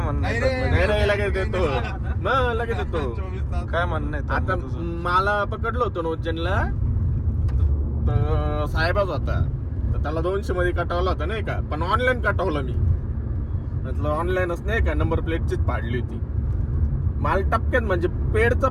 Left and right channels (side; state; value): both; identical; correlation 1.00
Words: म्हणणं आहे? लगेच देतो. लगेच देतो. काय म्हणणं आहे आता तुझं? मला पकडलं होतं नोजनला, तर साहेबच होता. तर त्याला 200 मध्ये कटवला होता नाही का, पण ऑनलाईन कटवलं मी. म्हटलं ऑनलाईनच नाही का, नंबर प्लेटचीच पाडली होती. मला टपक्यात म्हणजे पेडचा